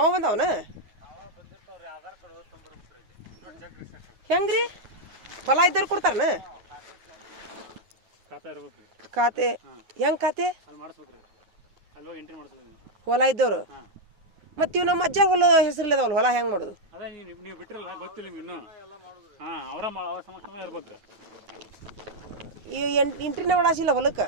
ಬಂದವನ ಹೆಂಗ್ರಿ ಹೊಲ ಇದ್ದವ್ರು ಕೊಡ್ತಾರನ ಖಾತೆ ಹೆಂಗ್ ಖಾತೆ ಹೊಲ ಇದ್ದವ್ರು ಮತ್ತೆ ಇವ್ ನಮ್ಮ ಅಜ್ಜ ಹೊಲ ಹೆಸರಿಲ್ಲದವಲ್ಲ ಹೊಲ ಹೆಂಗ್ ಮಾಡೋದು ನೀವು ಬಿಟ್ಟಿರಲ್ಲ ಗೊತ್ತಿಲ್ಲ ಇನ್ನು ಅವರ ಸಮಕ್ಷಮ ಇರ್ಬೇಕು ಈ ಎಂಟ್ರಿನ ಒಳಸಿಲ್ಲ ಹೊಲಕ್ಕೆ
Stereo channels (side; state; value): left; late; 9.4 ms